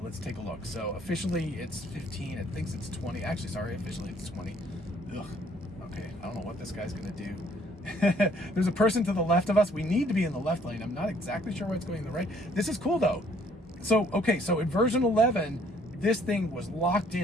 let's take a look. So officially it's 15, it thinks it's 20. Actually, sorry, officially it's 20. Ugh, okay, I don't know what this guy's gonna do. There's a person to the left of us. We need to be in the left lane. I'm not exactly sure why it's going in the right. This is cool though. So, okay, so in version 11, this thing was locked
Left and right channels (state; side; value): normal; both; correlation 0.62